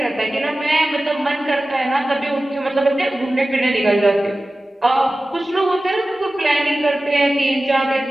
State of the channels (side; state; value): both; normal; correlation 0.96